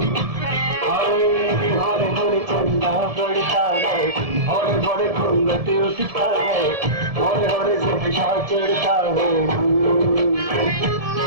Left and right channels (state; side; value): late; left; 1.7 ms